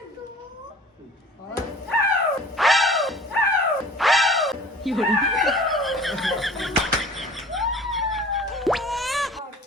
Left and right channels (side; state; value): both; normal; correlation 0.45